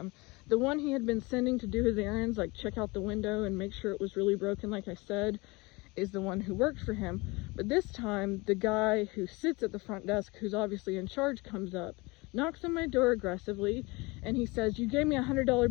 one he had been sending to do his errands, like check out the window and make sure it was really broken, like I said, is the one who worked for him. But this time, the guy who sits at the front desk, who's obviously in charge, comes up, knocks on my door aggressively, and he says, you gave me a $100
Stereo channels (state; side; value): quieter; right; 24.9 dB